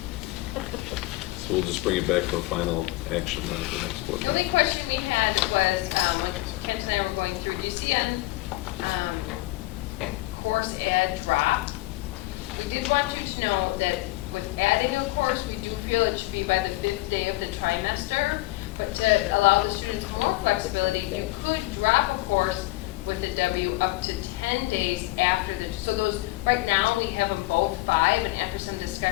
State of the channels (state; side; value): quieter; right; 20.2 dB